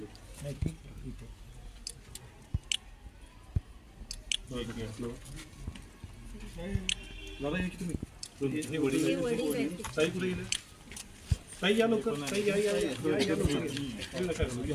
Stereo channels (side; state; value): both; identical; correlation 1.00